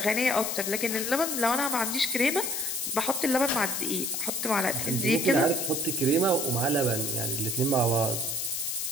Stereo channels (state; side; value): noise; left; hiss, 2 dB below the sound